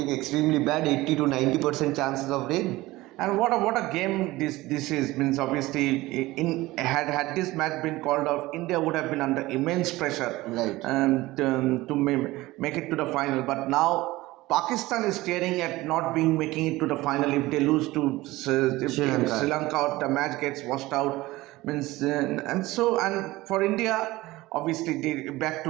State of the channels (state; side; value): quieter; left; 18.9 dB